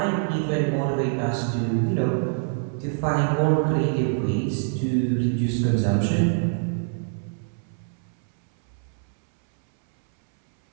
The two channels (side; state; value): left; silent; 62 dB below the other